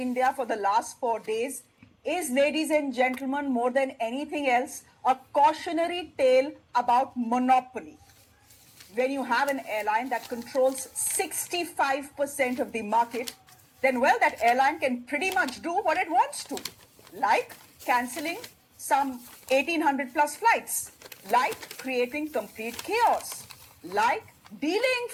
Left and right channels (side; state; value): both; identical; correlation 1.00